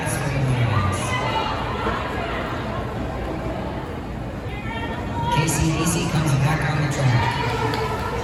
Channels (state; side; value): identical; both; correlation 1.00